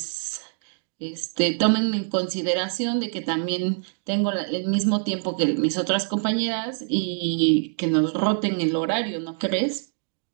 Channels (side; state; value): left; silent; digital silence